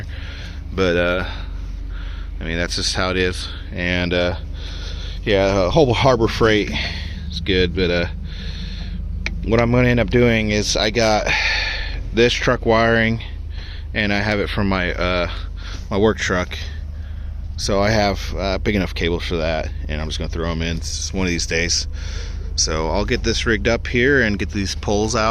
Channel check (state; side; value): identical; both; correlation 1.00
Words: but I mean, that's just how it is. And yeah, whole Harbor Freight is good, but what I'm going to end up doing is I got this truck wiring, and I have it from my my work truck, so I have big enough cables for that, and I'm just going to throw them in one of these days. So I'll get this rigged up here and get these poles